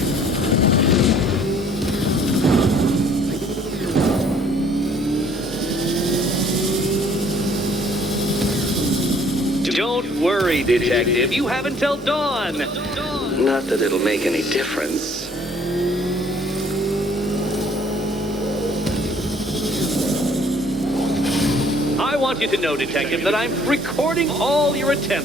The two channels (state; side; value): normal; both; correlation 0.59